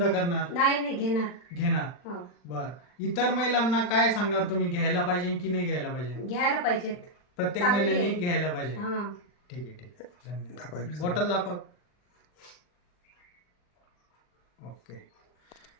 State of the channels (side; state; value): right; late; 40 ms